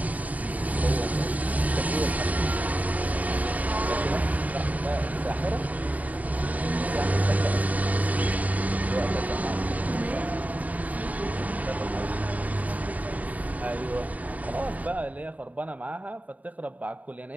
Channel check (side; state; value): left; late; 0.074 ms